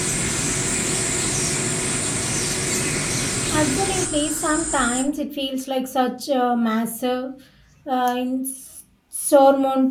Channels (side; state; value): both; identical; correlation 1.00